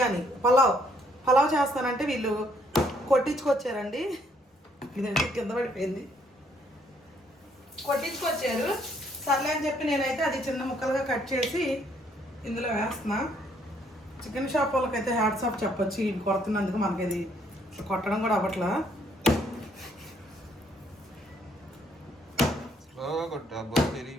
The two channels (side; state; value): both; normal; correlation 0.67